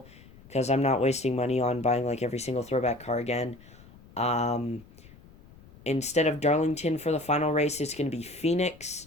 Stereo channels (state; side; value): noise; left; rumble, 23 dB below the sound